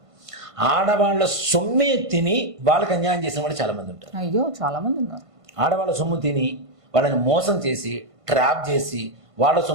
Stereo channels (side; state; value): left; late; 1.5 ms